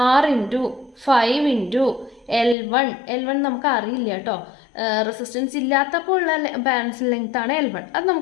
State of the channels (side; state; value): right; drops out; at 2.6 s